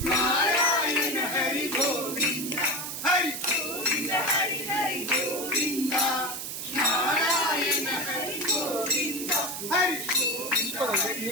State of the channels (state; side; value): noise; right; hiss, 6 dB below the sound